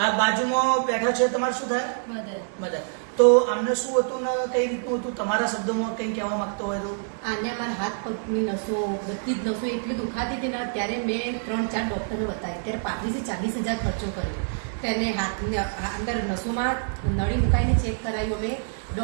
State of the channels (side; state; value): left; silent; 61 dB below the other